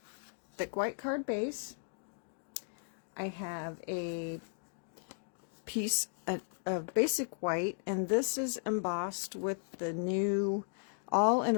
thick white card base. I have a piece of basic white, and this is embossed with the new all in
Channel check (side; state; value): right; silent; digital silence